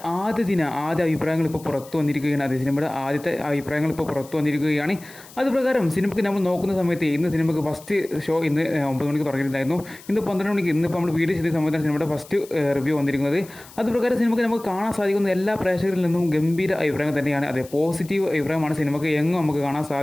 ആദ്യ അഭിപ്രായങ്ങൾ ഇപ്പോൾ പുറത്തു വന്നിരിക്കുകയാണ്. അത് സിനിമയുടെ ആദ്യത്തെ അഭിപ്രായങ്ങൾ ഇപ്പോൾ പുറത്തു വന്നിരിക്കുകയാണ്. അതുപ്രകാരം സിനിമയ്ക്ക് നമ്മൾ നോക്കുന്ന സമയത്ത് ഇന്ന് സിനിമയ്ക്ക് ഫസ്റ്റ് ഷോ ഇന്ന് 9 മണിക്ക് തുടങ്ങിയിട്ടുണ്ടായിരുന്നു. ഇന്ന് 12 മണിക്ക് ഇന്നിപ്പോൾ നമ്മൾ വീഡിയോ ചെയ്ത സമയത്താണ് സിനിമയുടെ ഫസ്റ്റ് റിവ്യൂ വന്നിരിക്കുന്നത്. അതുപ്രകാരം സിനിമയ്ക്ക് നമുക്ക് കാണാൻ സാധിക്കുന്ന എല്ലാ പ്രേക്ഷകരിൽ നിന്നും ഗംഭീര അഭിപ്രായം തന്നെയാണ്. അതെ, പോസിറ്റീവ് അഭിപ്രായമാണ് സിനിമയ്ക്ക് നമുക്ക് കാണാൻ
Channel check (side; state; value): left; noise; hiss, 21 dB below the sound